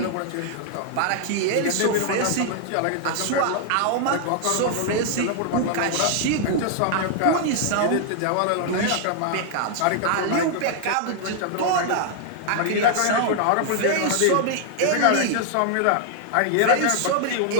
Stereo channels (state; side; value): different; both; correlation 0.00